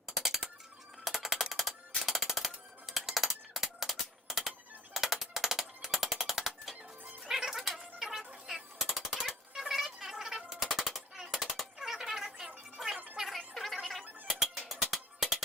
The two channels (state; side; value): normal; both; correlation 0.47